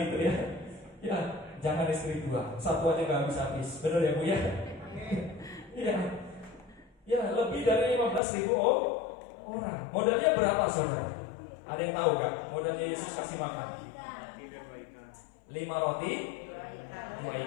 itu ya. Ya, jangan istri dua, satu aja nggak habis-habis. Benar ya Bu ya? Iya. Ya, lebih dari 15.000 orang. Modalnya berapa saudara? Ada yang tahu gak? Modalnya Yesus kasih makan 5 roti 2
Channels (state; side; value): drops out; right; at 8.2 s